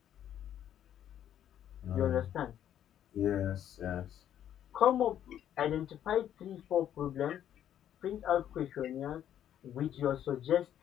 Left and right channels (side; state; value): right; quieter; 10.6 dB